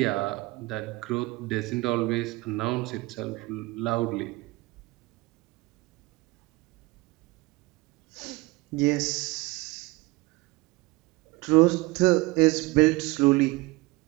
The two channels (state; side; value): quieter; left; 22.2 dB